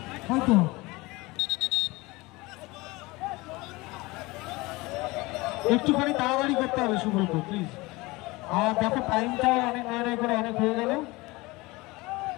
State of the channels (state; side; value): quieter; right; 22.3 dB